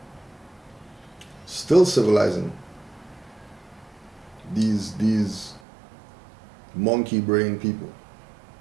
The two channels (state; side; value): drops out; left; at 5.6 s